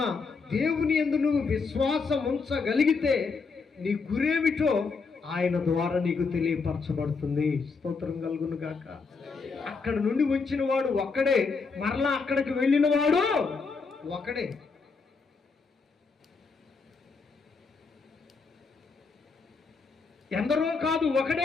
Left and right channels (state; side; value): quieter; right; 4.7 dB